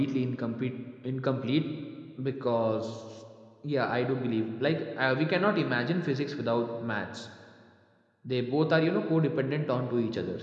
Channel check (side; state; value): both; identical; correlation 1.00